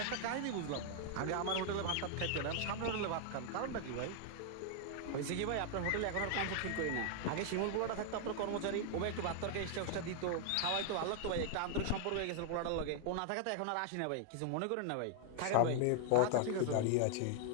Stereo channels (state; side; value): different; both; correlation 0.00